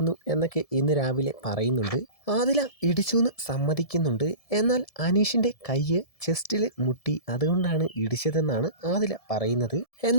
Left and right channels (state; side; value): late; right; 1.7 ms